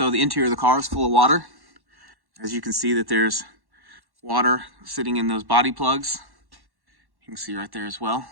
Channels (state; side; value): late; left; 1.1 ms